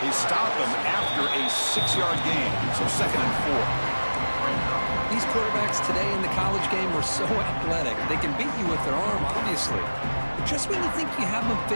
stop him after a 6-yard gain, so 2nd and 4. These quarterbacks today in the college game are so athletic. They can beat you with their arm, obviously. But just when you think you have them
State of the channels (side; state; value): both; inverted; correlation -1.00